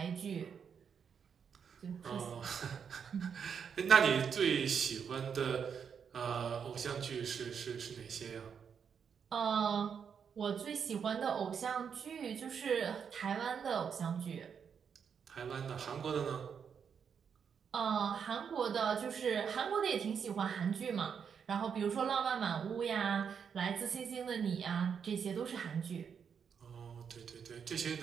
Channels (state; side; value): quieter; left; 7.0 dB